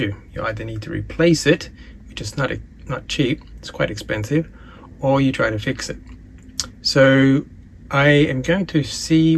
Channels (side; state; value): both; identical; correlation 1.00